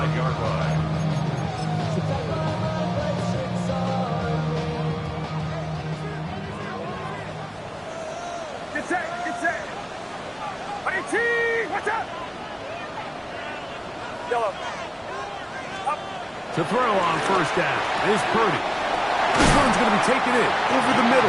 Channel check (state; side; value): identical; both; correlation 1.00